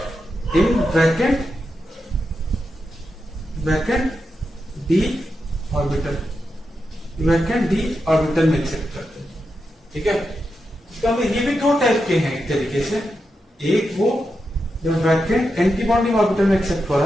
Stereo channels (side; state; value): both; normal; correlation 0.87